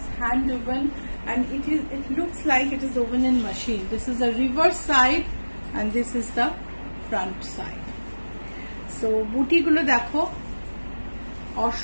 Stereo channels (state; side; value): inverted; both; correlation -1.00